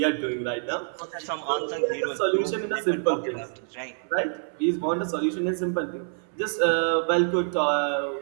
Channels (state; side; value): silent; left; 58 dB below the other